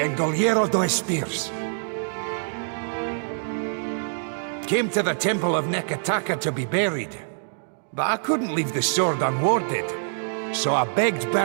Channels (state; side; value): silent; left; digital silence